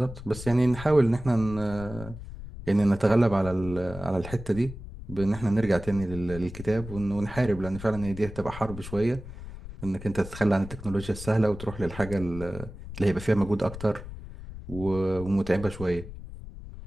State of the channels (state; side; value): noise; left; rumble, 12 dB below the sound